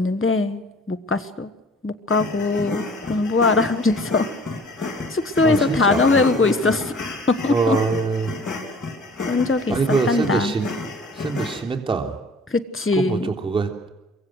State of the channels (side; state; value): both; normal; correlation 0.49